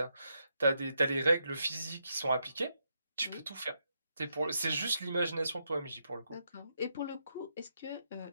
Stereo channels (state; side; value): inverted; both; correlation -0.80